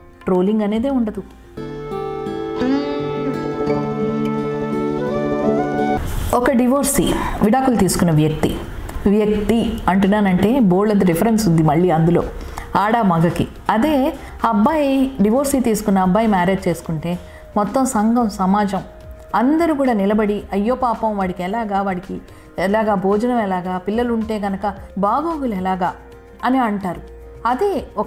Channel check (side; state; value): both; identical; correlation 1.00